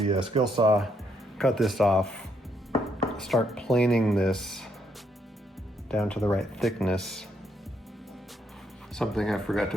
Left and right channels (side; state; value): both; normal; correlation 0.74